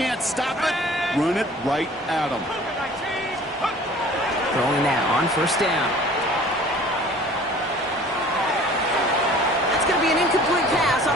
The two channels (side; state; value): both; normal; correlation 0.48